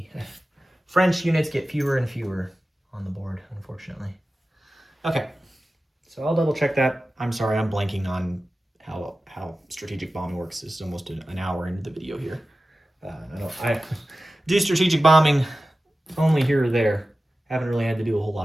French units get fewer and fewer on the board, unfortunately. Okay, so I'll double check that. I'm sorry, I'm blanking on how strategic bombing works. This is almost an hour into the video here. I do strategic bombing only here or there. Haven't really had to do a whole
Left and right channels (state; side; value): normal; both; correlation 0.95